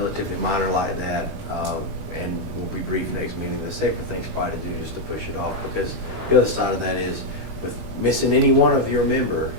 minor like that, and we'll be brief next meeting. The safer thing's probably to do is to push it off, because the other side of that is with missing any one of your member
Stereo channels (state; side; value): late; left; 19 ms